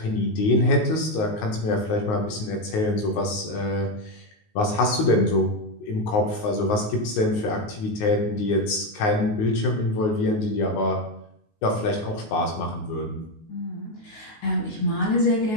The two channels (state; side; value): late; right; 19 ms